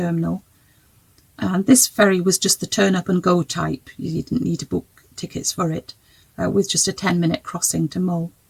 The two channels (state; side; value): identical; both; correlation 1.00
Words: And this ferry was just the turn up and go type. You didn't need to book tickets for it, with just a 10-minute crossing to Mull.